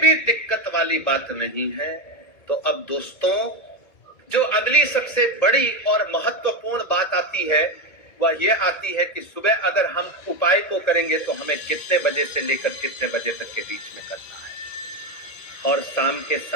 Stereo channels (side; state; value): right; late; 2.2 ms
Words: दिक्कत वाली बात नहीं है। तो अब दोस्तों, जो अगली सबसे बड़ी और महत्वपूर्ण बात आती है वह यह आती है कि सुबह अगर हम उपाय को करेंगे तो हमें कितने बजे से लेकर कितने बजे तक के बीच में करना है, और शाम के